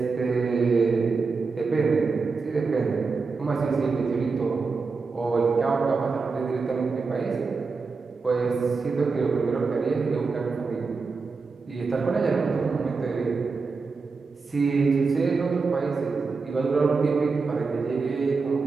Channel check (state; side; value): quieter; left; 4.5 dB